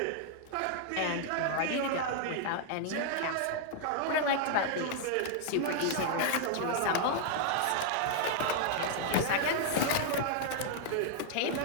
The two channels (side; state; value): both; different; correlation -0.01